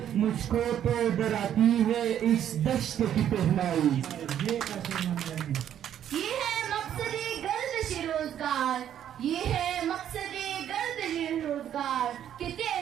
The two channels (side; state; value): left; quieter; 10.2 dB